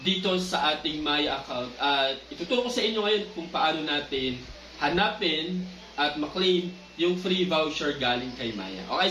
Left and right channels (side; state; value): both; identical; correlation 1.00